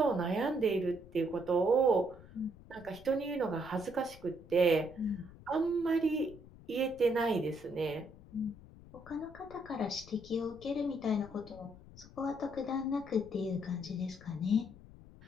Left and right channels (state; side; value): noise; left; rumble, 19 dB below the sound